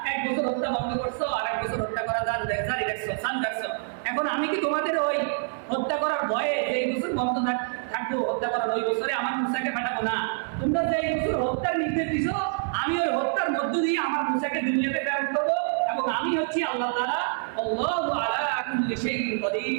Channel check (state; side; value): silent; left; 61 dB below the other